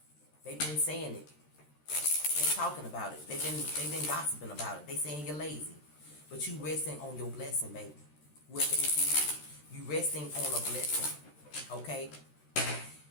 They've been saying it. They've been talking about it. They've been gossiping about it. They saying you're lazy. But you resting on your blessing, baby. Whoever this is. You resting on a blessing. Okay?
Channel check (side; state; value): right; late; 13 ms